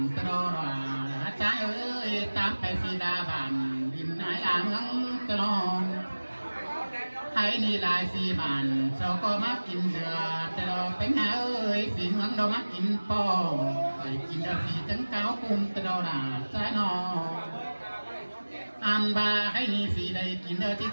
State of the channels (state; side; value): inverted; both; correlation -1.00